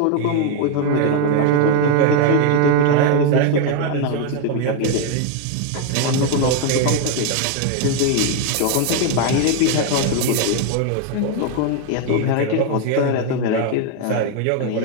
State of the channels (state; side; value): different; both; correlation 0.01